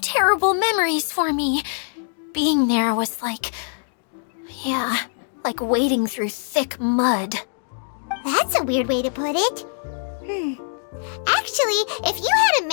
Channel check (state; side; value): silent; right; digital silence